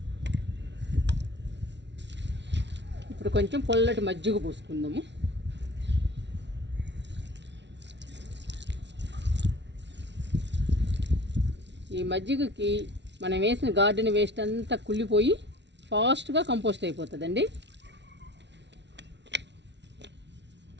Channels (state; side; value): late; left; 0.51 ms